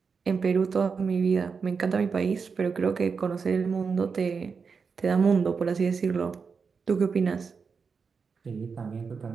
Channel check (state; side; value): quieter; left; 5.4 dB